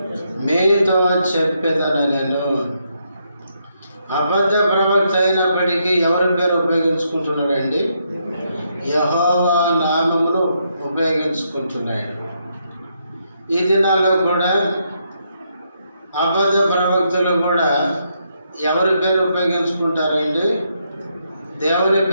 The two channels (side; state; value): both; inverted; correlation -0.78